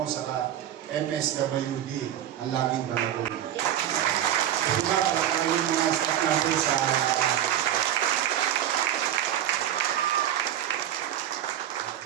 saka MSWD, ang laging balagong. Kasi ba, para kayo mga staff natin sa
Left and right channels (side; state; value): left; quieter; 11.2 dB